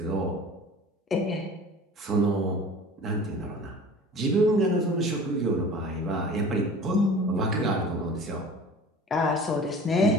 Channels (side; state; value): both; normal; correlation 0.42